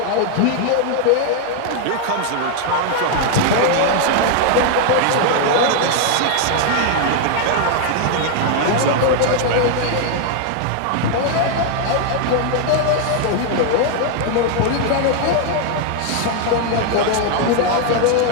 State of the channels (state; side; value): different; both; correlation 0.00